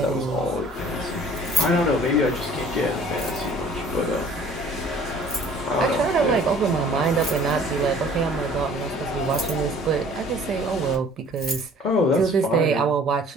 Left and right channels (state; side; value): normal; both; correlation 0.51